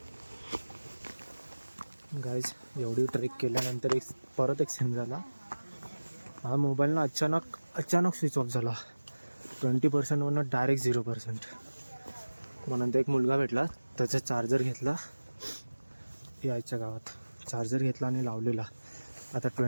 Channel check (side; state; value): both; inverted; correlation -1.00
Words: गाईज, एवढी ट्रेक केल्यानंतर परत एक सीन झाला. हा मोबाईल ना अचानक स्विच ऑफ झाला. 20%वरनं डायरेक्ट 0%. मग नंतर एक मुलगा भेटला, त्याचा चार्जर घेतला. यायच्या गावात चार्जर घेतला आणि लावलेला. आता